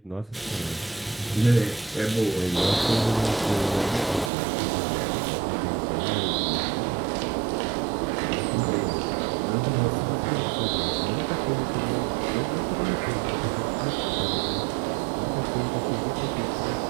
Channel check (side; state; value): left; drops out; at 4.3 s